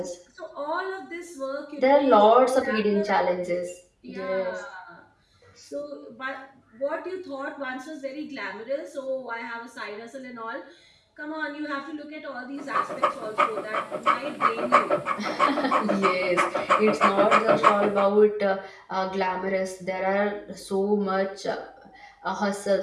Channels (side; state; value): both; identical; correlation 1.00